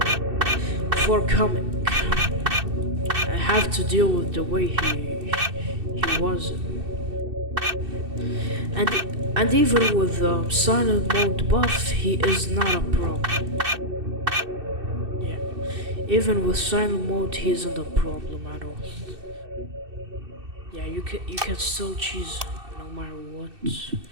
coming. I have to deal with the way he was, and even with silent mode buff, he is not a problem. Even with silent mode, he isn't a problem at all. Yeah, you can still cheese no matter what.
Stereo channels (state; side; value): late; left; 2.6 ms